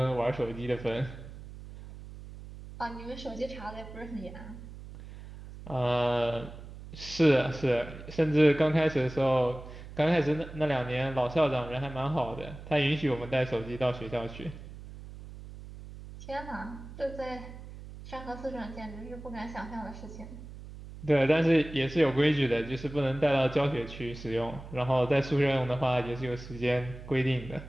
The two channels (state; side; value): noise; right; hum, 14 dB below the sound